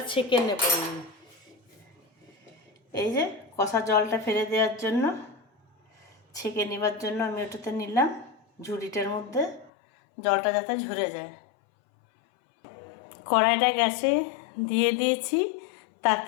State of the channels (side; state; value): right; drops out; at 9.7 s